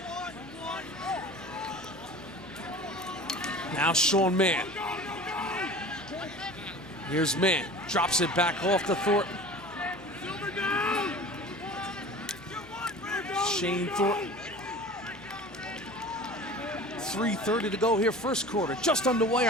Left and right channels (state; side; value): normal; both; correlation 0.39